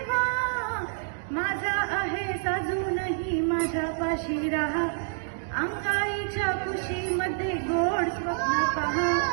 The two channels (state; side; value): silent; left; digital silence